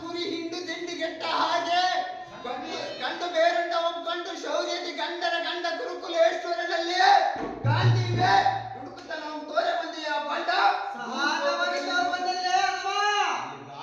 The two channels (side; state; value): both; identical; correlation 1.00